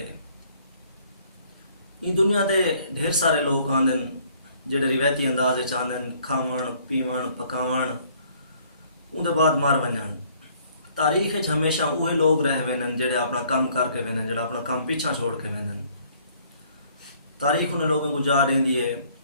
ان دنیا دے ڈھیر سارے لوگ آندن جڑے روایتی انداز وچ آندن کھاون پیون پکاون اون دے بعد مر ونجن۔ تاریخ ہمیشہ اوہے لوگ رہ وینن جڑے اپنا کام کر کے وینن، جڑا اپنا کام پیچھا چھوڑ کے وینن۔ تاریخ انہیں لوگوں کو جا دیندی ہے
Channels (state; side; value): inverted; both; correlation -0.61